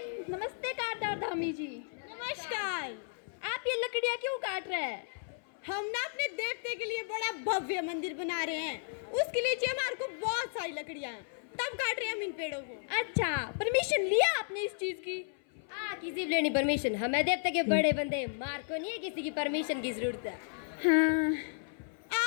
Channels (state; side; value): silent; right; 55 dB below the other